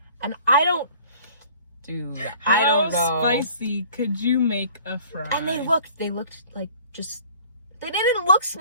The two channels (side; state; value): both; inverted; correlation -0.51